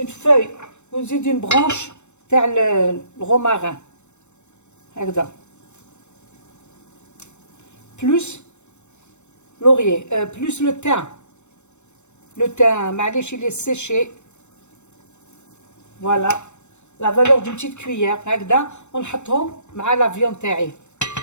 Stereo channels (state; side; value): late; right; 0.83 ms